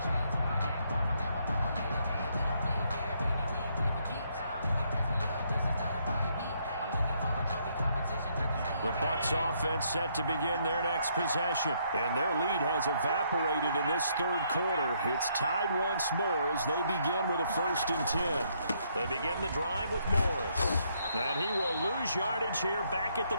The Bucs offense set to begin their next possession. And their lead has evaporated in this third quarter. It's tied once more as they begin with a 1st and 10. They begin the drive with Morris. And he will lose yardage here back at the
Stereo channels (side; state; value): both; inverted; correlation -0.72